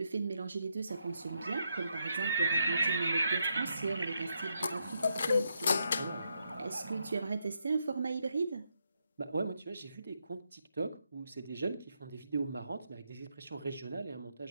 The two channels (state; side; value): inverted; both; correlation -0.80